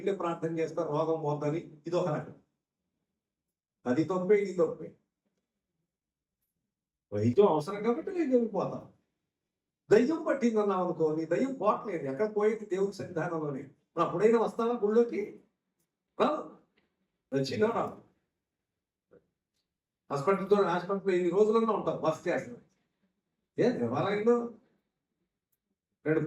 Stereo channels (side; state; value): both; identical; correlation 1.00